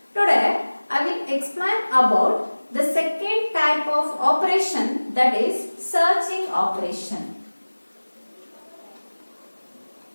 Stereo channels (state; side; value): inverted; both; correlation -1.00